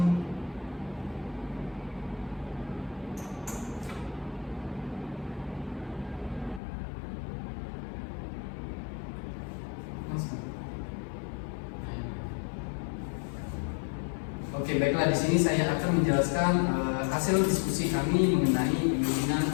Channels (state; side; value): drops out; right; at 6.6 s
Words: Oke, baiklah, di sini saya akan menjelaskan hasil diskusi kami mengenai penyuntingan